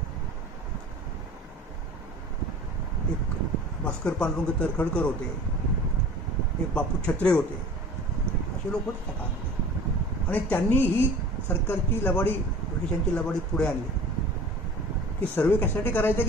एक भास्कर पांडुरंग तरखडकर होते, एक बापू छत्रे होते, असे लोक होते त्या काळामध्ये. आणि त्यांनी ही सरकारची लबाडी, ब्रिटिशांची लबाडी पुढे आणली की सर्वे कशासाठी करायचा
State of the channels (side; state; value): both; normal; correlation 0.43